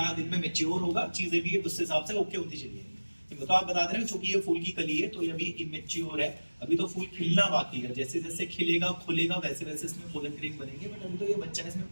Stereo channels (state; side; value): inverted; both; correlation -1.00